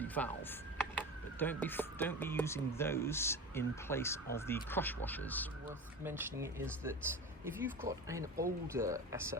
valve. But don't be using those in place of the crush washers. Worth mentioning is that if you've got an older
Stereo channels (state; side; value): normal; both; correlation 0.29